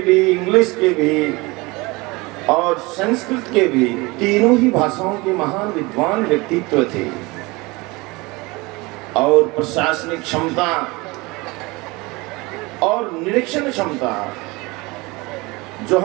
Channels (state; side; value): quieter; left; 24.0 dB